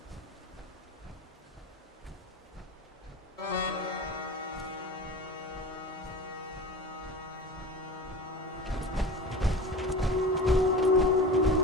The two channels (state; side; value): normal; both; correlation 0.32